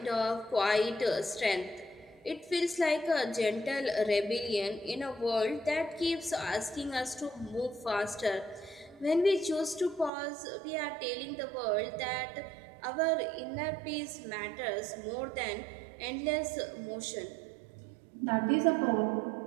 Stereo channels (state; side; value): drops out; left; at 10.1 s